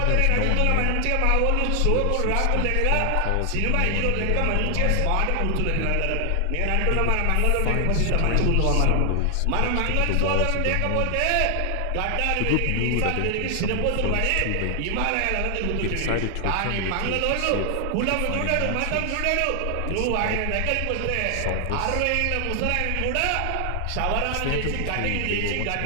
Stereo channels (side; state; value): both; different; correlation 0.00